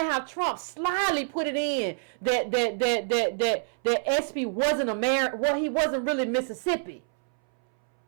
how Trump slyly put it in that SB wasn't America. Well, he wasn't really Mississippi.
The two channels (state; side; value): silent; left; 60 dB below the other